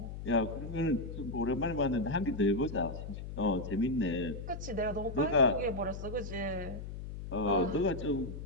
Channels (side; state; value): left; noise; hum, 8 dB below the sound